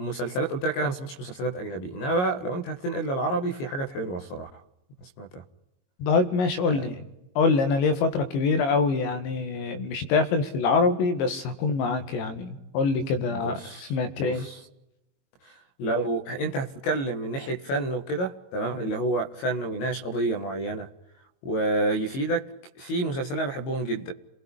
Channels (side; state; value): right; late; 22 ms